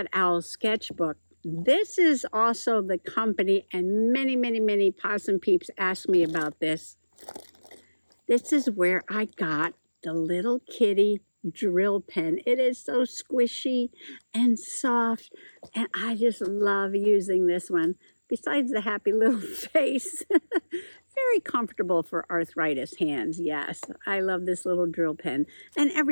owl sketchbook, this is also the company, and many possum peeps ask me about this. This is where I got the little kitty drill pen. It is so squishy and soft, and I just love using this one. Besides the happy little face, very comfortable for arthritis hands. Yes, I love this little drill pen and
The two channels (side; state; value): both; inverted; correlation -1.00